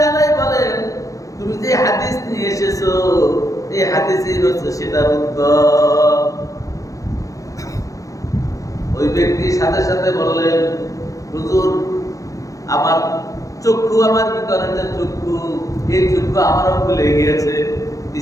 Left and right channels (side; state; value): right; late; 0.16 ms